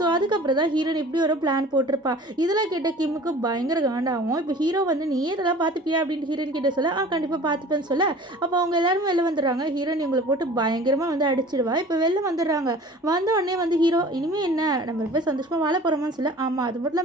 அதுக்கப்புறம் தான் ஹீரோயின் இப்படி ஒரு பிளான் போட்டிருப்பா. இதெல்லாம் கேட்ட கிம்முக்கு பயங்கர காண்டாகும். இப்போ ஹீரோ வந்து நீ இதெல்லாம் பார்த்துப்பியா அப்படின்னு ஹீரோயின் கிட்ட சொல்ல, கண்டிப்பாக பார்த்துப்பேன்னு சொல்ல. அப்போ அவங்க எல்லாரும் வெளில வந்துடுறாங்க. ஹீரோயின் இவங்களை போட்டு பயங்கரமாக வந்து அடிச்சிடுவா. இப்போ வெளில வந்துடுறாங்க. வந்த உடனே வந்து ஹீரோ, இனிமேல் என்ன நம்ம போய் சந்தோஷமாக வாழ போகிறோமான்னு சொல்ல. ஆமாம், அது மட்டும்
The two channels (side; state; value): both; normal; correlation 0.44